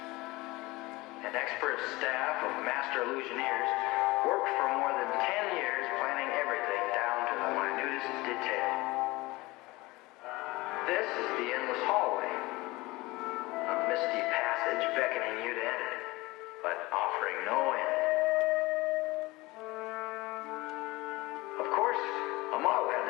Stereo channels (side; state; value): right; quieter; 21.4 dB